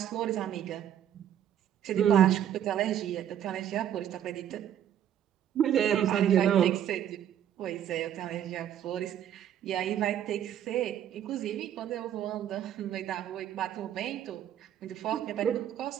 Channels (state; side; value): quieter; left; 10.3 dB